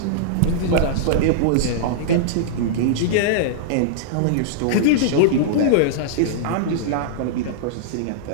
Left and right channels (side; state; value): both; different; correlation -0.02